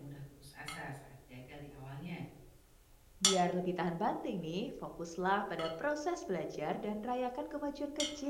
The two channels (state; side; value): identical; both; correlation 1.00